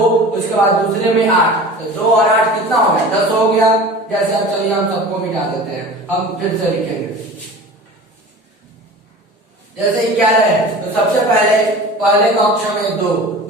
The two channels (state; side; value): normal; both; correlation 0.38